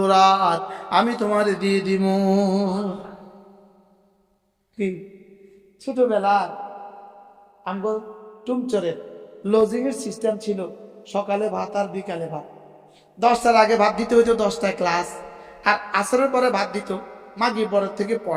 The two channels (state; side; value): identical; both; correlation 1.00